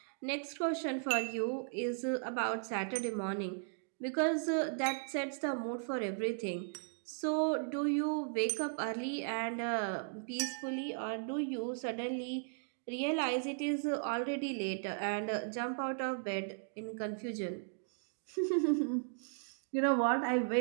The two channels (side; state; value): left; silent; digital silence